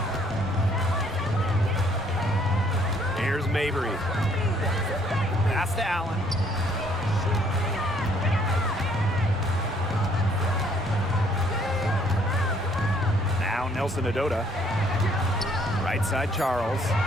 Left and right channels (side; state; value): both; normal; correlation 0.64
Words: Here's Mabry. Pass to Allen. Now Nelson Adota. Right side Charles.